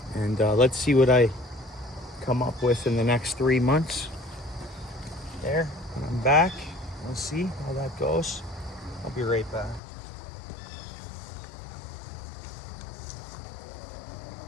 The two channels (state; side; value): drops out; right; at 9.8 s